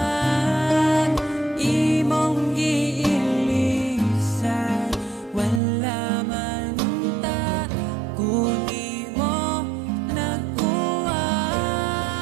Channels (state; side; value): drops out; left; at 5.6 s